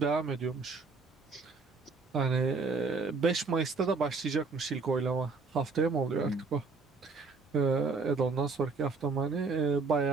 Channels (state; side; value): quieter; left; 4.3 dB